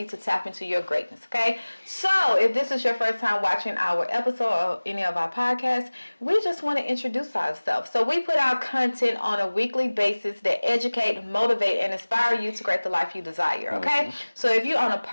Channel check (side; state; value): both; inverted; correlation -1.00